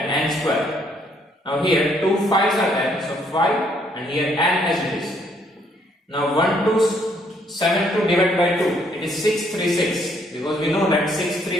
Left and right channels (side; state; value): both; normal; correlation 0.68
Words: n square. Now here 2 5s are there, so 5 and here n as it is. Now 1272 divided by 2, it is 636. Because we know that